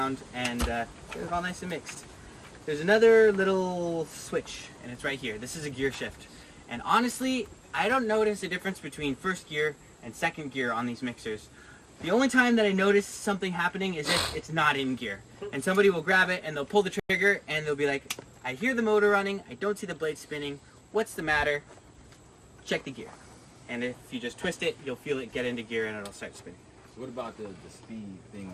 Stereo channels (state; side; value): identical; both; correlation 1.00